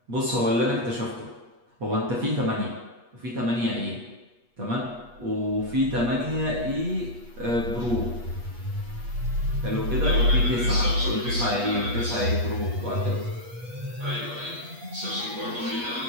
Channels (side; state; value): left; late; 8.3 ms